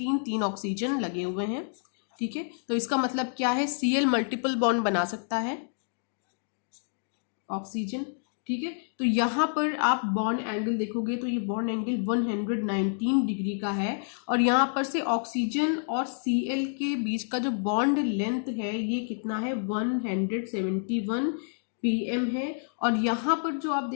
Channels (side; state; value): right; silent; digital silence